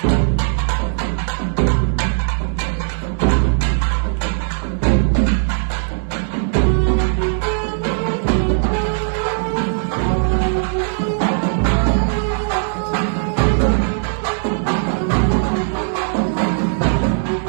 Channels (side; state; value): left; silent; 64 dB below the other